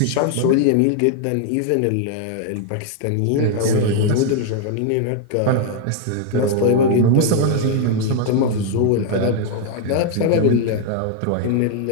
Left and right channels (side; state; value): both; different; correlation 0.00